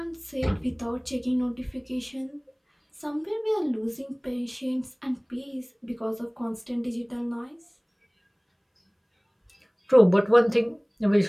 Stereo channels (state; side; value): identical; both; correlation 1.00